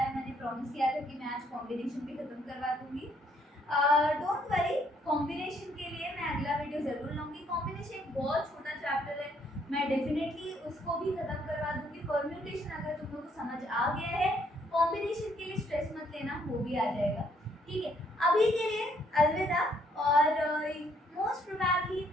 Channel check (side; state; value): both; normal; correlation 0.68